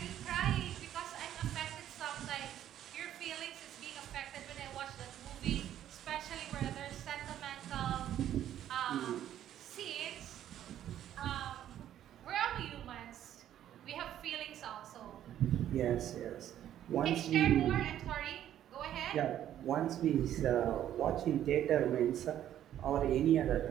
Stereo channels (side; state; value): left; quieter; 11.3 dB